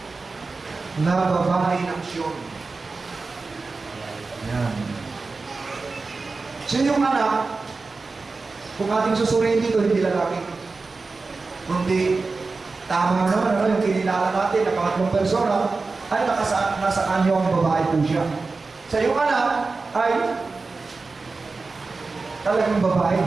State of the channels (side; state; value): left; quieter; 4.0 dB